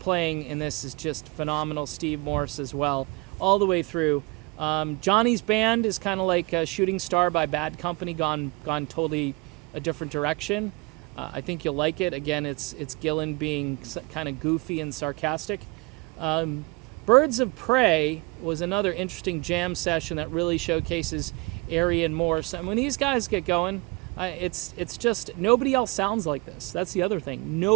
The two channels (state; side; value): quieter; left; 26.8 dB